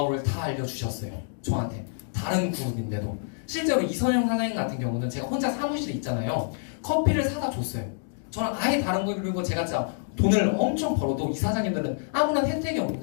다 알려주셨어요. 저한테. 다른 그룹인데도. 실제로 이선영 사장님 같은 경우는 제가 혼자 사무실에 있잖아요. 커피를 사다 줬어요. 저랑 아예 다른 거. 그리고 제가 진짜 돈을 엄청 벌어도 이 사장님들은 아무런 혜택이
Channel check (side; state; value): right; silent; digital silence